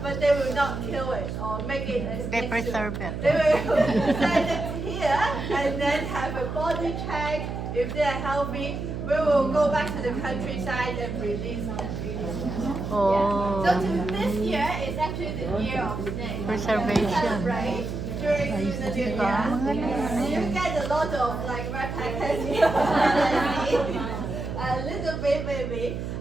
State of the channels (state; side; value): noise; right; hum, 5 dB below the sound